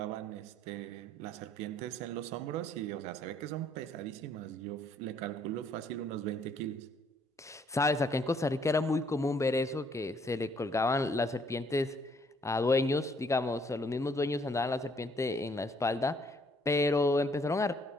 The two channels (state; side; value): normal; both; correlation 0.66